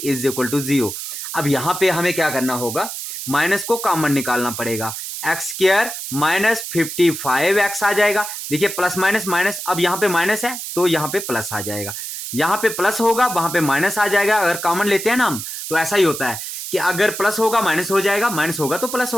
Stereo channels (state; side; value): noise; right; hiss, 7 dB below the sound